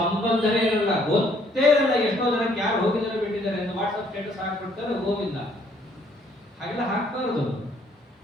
ಇರಲ್ಲ, ಗೊತ್ತೇ ಇರಲ್ಲ. ಎಷ್ಟೋ ಜನಕ್ಕೆ ಯಾರು ಹೋಗಿದ್ದಾರೆ ಬಿಟ್ಟಿದ್ದಾರೆ ಅಂತ ವಾಟ್ಸಪ್ ಸ್ಟೇಟಸ್ ಹಾಕ್ಬಿಡ್ತಾರೆ, ಗೋವಿಂದ. ಹಾಗೆಲ್ಲ ಹಾಕ್ಬಾರದು.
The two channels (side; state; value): both; normal; correlation 0.65